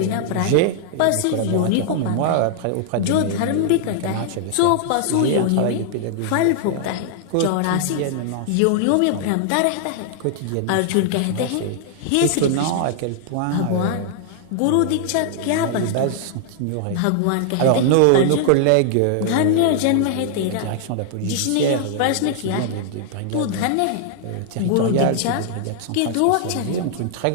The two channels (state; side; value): different; both; correlation -0.01